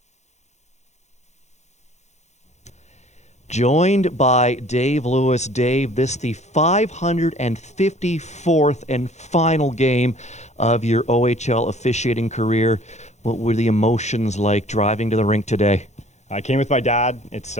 Joined by Dave Lewis. Dave, this the 554th and final game of your OHL officiating career. What were the emotions like driving to the rink today? I came with my dad. It's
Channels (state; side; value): late; right; 0.33 ms